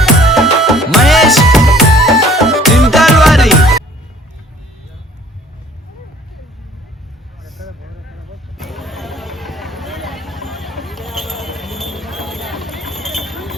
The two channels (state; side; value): normal; both; correlation 0.55